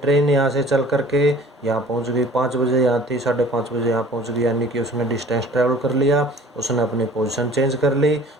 यहाँ से चल करके यहाँ पहुंच गई, 5 बजे यहाँ थी, 5:30 बजे यहाँ पहुंच गई, यानी कि उसने डिस्टेंस ट्रेवल कर लिया, उसने अपनी पोजीशन चेंज कर ली।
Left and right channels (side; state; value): both; normal; correlation 0.48